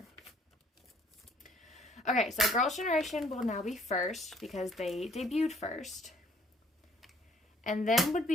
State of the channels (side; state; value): both; normal; correlation 0.60